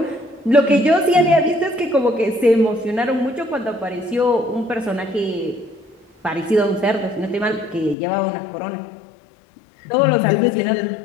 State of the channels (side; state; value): right; drops out; at 8.0 s